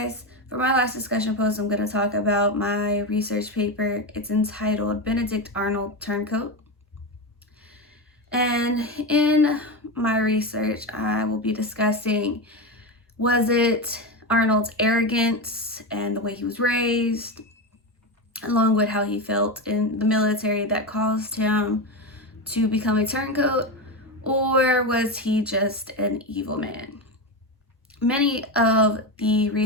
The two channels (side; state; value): both; normal; correlation 0.16